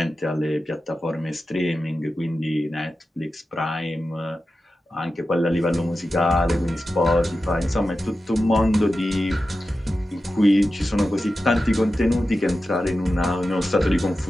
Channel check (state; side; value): normal; both; correlation 0.92